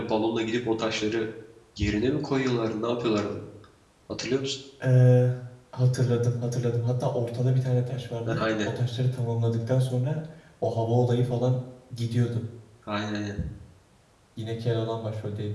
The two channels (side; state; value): both; identical; correlation 1.00